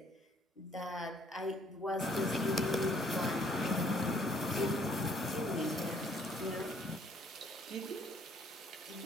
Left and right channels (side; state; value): both; normal; correlation 0.63